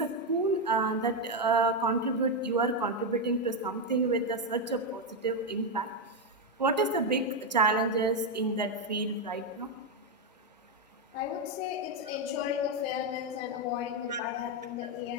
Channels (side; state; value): both; normal; correlation 0.05